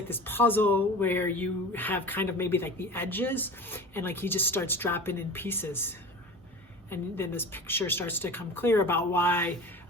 puzzle where you have kind of maybe the edges, and he just starts dropping in pieces, and then this picture starts to come clear about why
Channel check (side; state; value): both; normal; correlation 0.35